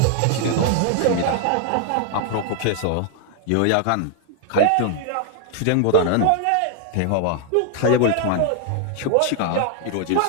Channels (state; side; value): different; both; correlation 0.00